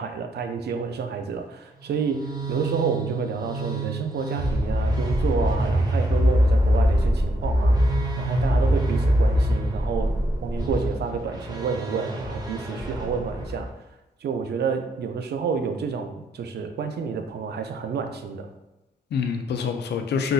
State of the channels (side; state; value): both; normal; correlation 0.73